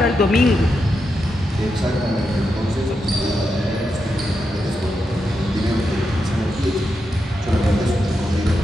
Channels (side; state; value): both; normal; correlation 0.86